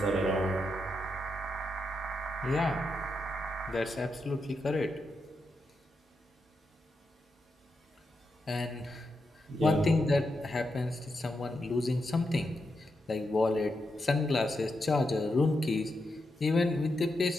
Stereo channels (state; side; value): normal; both; correlation 0.85